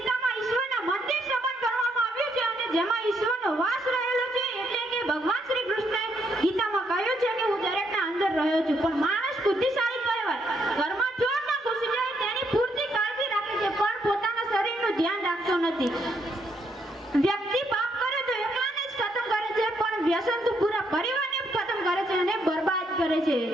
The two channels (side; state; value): both; normal; correlation 0.74